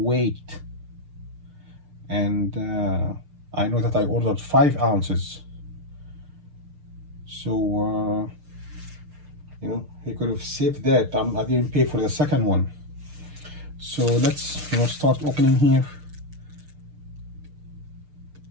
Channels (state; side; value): late; left; 6.6 ms